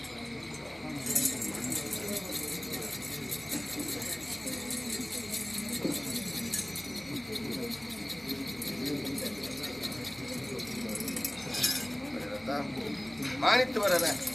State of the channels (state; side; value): noise; right; hum, 30 dB below the sound